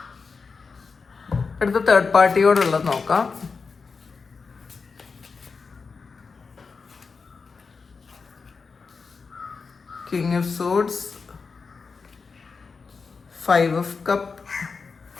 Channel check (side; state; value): right; quieter; 4.9 dB